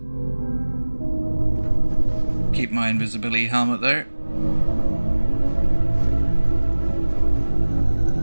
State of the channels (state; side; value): inverted; both; correlation -1.00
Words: Keep my invisibility helmet though.